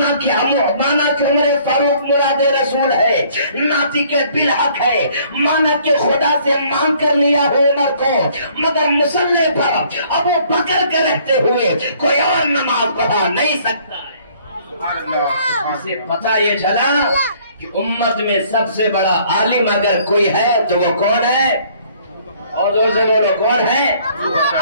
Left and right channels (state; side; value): inverted; both; correlation -0.60